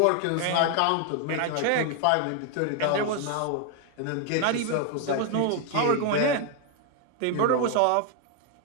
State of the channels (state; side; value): different; both; correlation 0.00